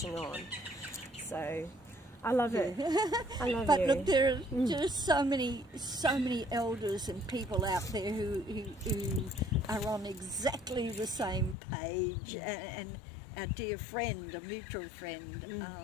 on. So I love it. I love but you. Look, there are so many elders and people out there who are on exactly the same page, and our dear friend, a mutual friend,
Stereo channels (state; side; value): drops out; right; at 11.6 s